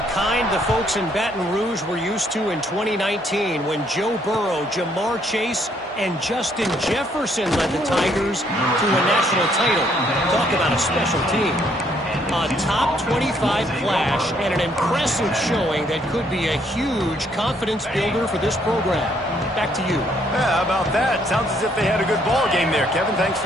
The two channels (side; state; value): both; normal; correlation 0.68